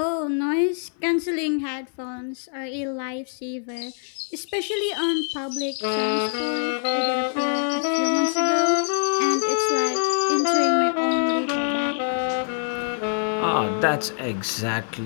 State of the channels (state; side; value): silent; right; 62 dB below the other